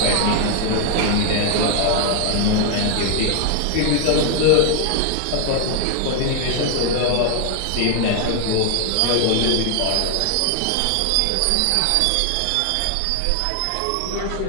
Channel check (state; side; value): different; both; correlation 0.00